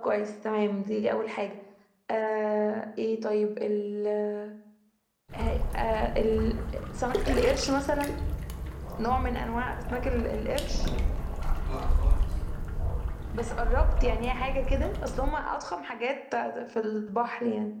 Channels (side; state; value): both; identical; correlation 1.00